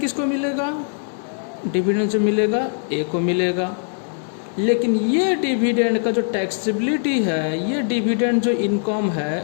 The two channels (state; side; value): silent; right; digital silence